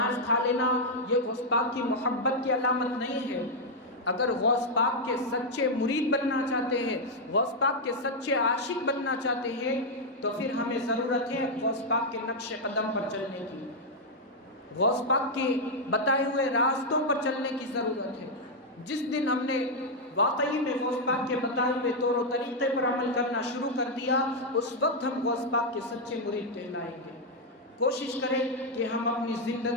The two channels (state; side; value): normal; both; correlation -0.01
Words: کھا لینا یہ غوث پاک کی محبت کی علامت نہیں ہے۔ اگر غوث پاک کے سچے مرید بننا چاہتے ہیں، غوث پاک کے سچے عاشق بننا چاہتے ہیں، تو پھر ہمیں ضرورت ہے غوث پاک کے نقش قدم پر چلنے کی، غوث پاک کے بتائے ہوئے راستوں پر چلنے کی ضرورت ہے۔ جس دن ہم نے واقعی میں غوث پاک کے بتائے ہوئے طور و طریقے پر عمل کرنا شروع کر دیا، اس وقت ہم غوث پاک کے سچے مرید کہلائیں گے۔ کوشش کریں کہ ہم اپنی